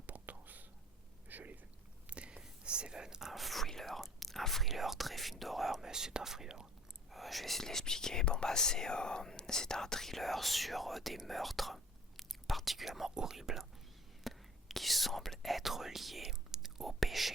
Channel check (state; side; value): normal; both; correlation 0.48